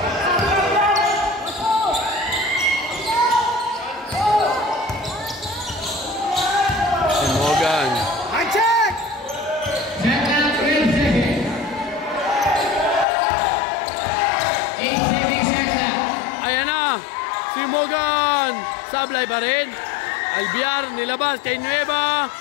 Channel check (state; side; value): drops out; right; at 13.1 s